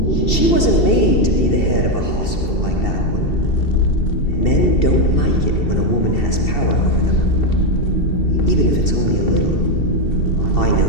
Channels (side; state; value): right; late; 2.7 ms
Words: She wasn't made to be the head of a hospital like that one. Men don't like it when a woman has power over them. Even if it's only a little. I know